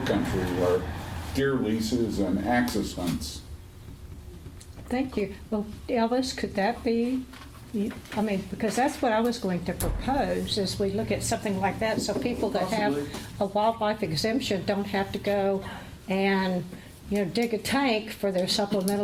country are deer leases and axis hunts. Thank you. Well, Elvis, could that be, because that's what I was going to propose, is we look at something like that, so people that have a wildlife exemption don't have to go and, dig a tank for their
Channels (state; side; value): identical; both; correlation 1.00